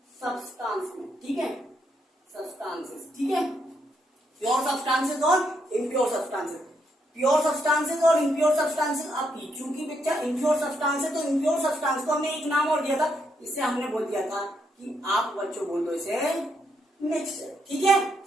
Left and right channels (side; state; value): both; normal; correlation 0.77